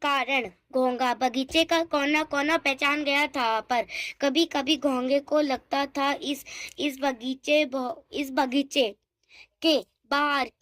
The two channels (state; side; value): identical; both; correlation 1.00